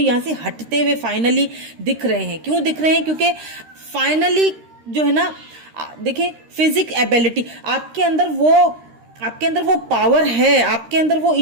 से हटते हुए फाइनली दिख रहे हैं। क्यों दिख रहे हैं? क्योंकि फाइनली जो है ना, देखिए फिजिक एबिलिटी आपके अंदर वो पावर है, आपके अंदर वो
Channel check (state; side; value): late; left; 13 ms